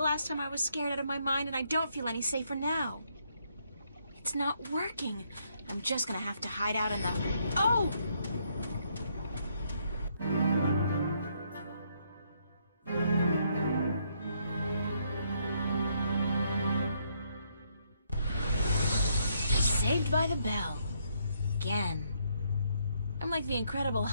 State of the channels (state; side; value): inverted; both; correlation -0.73